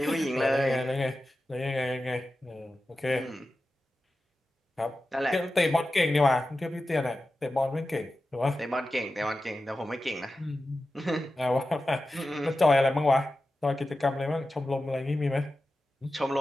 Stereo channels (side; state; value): both; normal; correlation 0.93